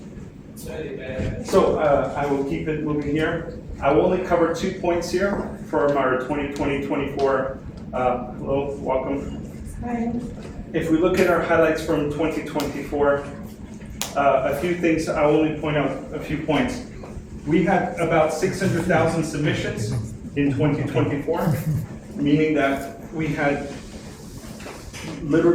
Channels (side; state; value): both; identical; correlation 1.00